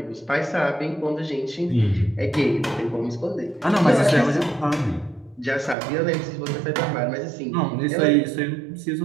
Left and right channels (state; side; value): drops out; left; at 5.8 s